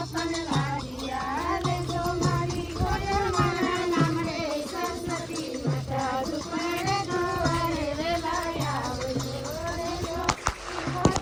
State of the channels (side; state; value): both; identical; correlation 1.00